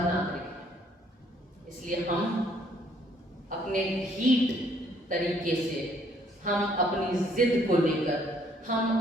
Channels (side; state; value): both; normal; correlation 0.64